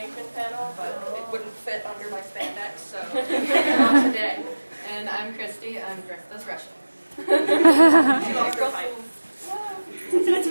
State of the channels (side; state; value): both; inverted; correlation -1.00